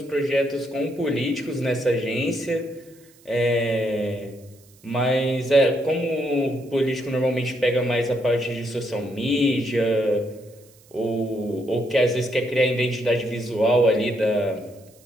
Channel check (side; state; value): right; noise; hiss, 28 dB below the sound